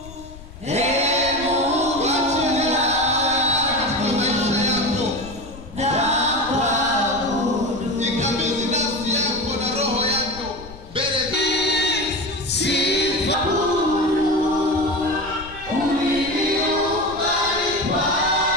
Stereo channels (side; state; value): left; noise; rumble, 16 dB below the sound